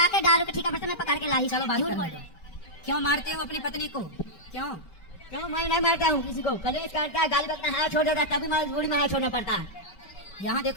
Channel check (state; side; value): late; right; 5.2 ms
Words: दारू के ठेका पर से मैं पकड़ के लाई। चलो बात झूठ करने बोल दो। रहे। क्यों मारते हो अपनी पत्नी को? क्यों? क्यों मैं नहीं मारता हूँ किसी को। कलेश करता है गाली बकता हाथ छोड़ देता है तभी मजबूरी में हाथ छोड़ना पड़ता है। यहाँ